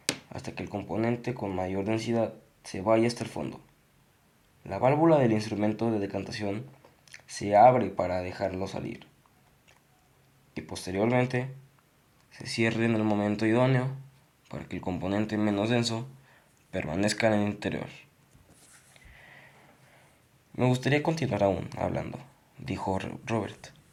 hasta que el componente con mayor densidad se vaya hasta el fondo. La válvula del instrumento de decantación se abre para dejarlo salir y posteriormente se cierre en el momento idóneo para que el componente menos denso permanezca en el interior. Me gustaría continuar aún hablando, dijo Robert,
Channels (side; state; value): both; identical; correlation 1.00